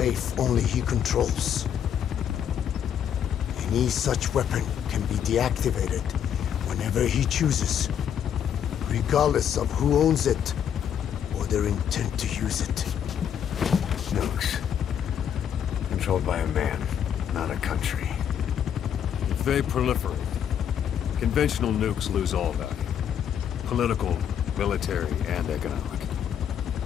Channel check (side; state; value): right; quieter; 8.9 dB